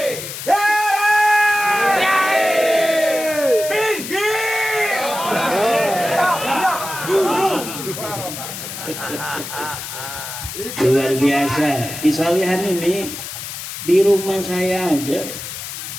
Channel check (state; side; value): noise; left; hiss, 8 dB below the sound